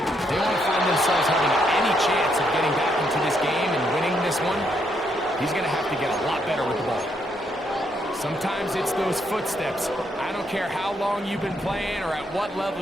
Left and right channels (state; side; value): normal; both; correlation 0.75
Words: they want to find themselves having any chance of getting back into this game and winning this one. He's going to have to get a lot better with the ball. Sometimes it's those footsteps. I don't care how long you've been playing or at what level